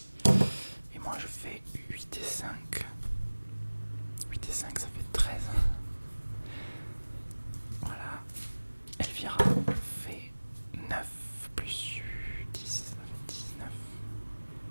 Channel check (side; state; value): both; inverted; correlation -1.00